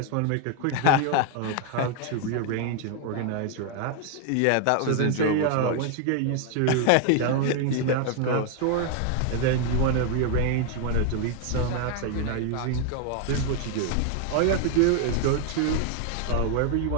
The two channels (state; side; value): different; both; correlation 0.00